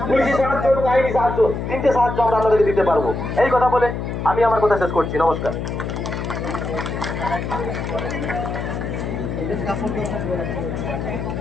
পুলিশি সাহায্য এবং আইনি সাহায্য। 3টে সাহায্য আমরা আপনাদেরকে দিতে পারবো। এই কথা বলে আমি আমার কথা শেষ করছি। নমস্কার।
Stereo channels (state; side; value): noise; left; hum, 4 dB below the sound